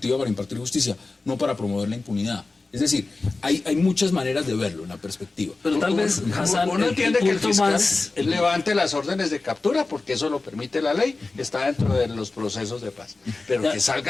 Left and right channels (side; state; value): right; quieter; 3.5 dB